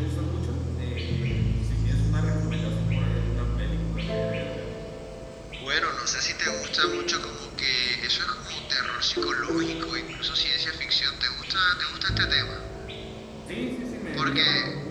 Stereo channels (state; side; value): identical; both; correlation 1.00